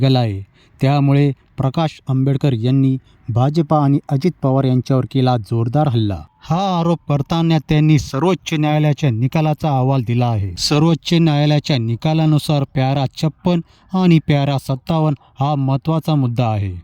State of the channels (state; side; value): identical; both; correlation 1.00